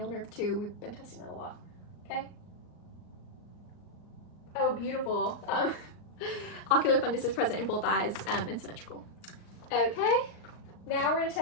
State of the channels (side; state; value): right; late; 39 ms